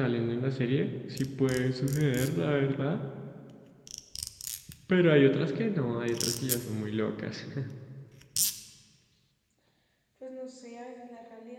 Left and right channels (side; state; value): both; identical; correlation 1.00